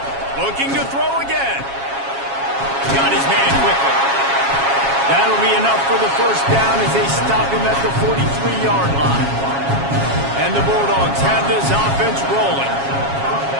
Looking to throw again. Got his man quickly. That'll be enough for the first down as they stop him at the 43-yard line. And the Bulldogs have this offense rolling.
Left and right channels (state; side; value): late; left; 7.3 ms